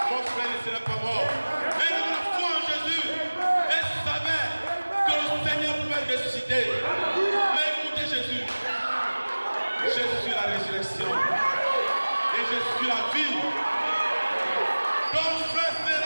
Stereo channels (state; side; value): inverted; both; correlation -1.00